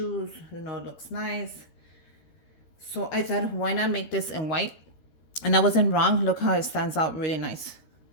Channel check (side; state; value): right; late; 13 ms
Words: It looks nice. So I thought, why not make this in white? And I wasn't wrong. Look how it stands out really nice.